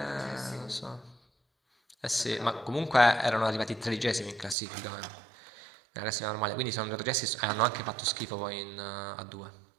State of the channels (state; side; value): drops out; left; at 4.5 s